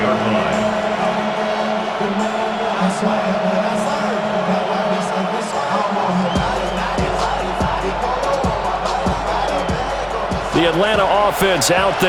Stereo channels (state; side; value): identical; both; correlation 1.00